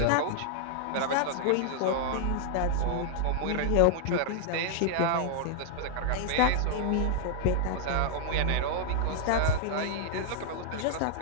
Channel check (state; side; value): different; both; correlation -0.01